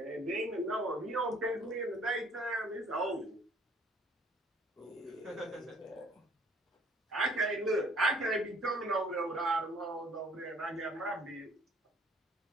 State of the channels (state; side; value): normal; both; correlation 0.58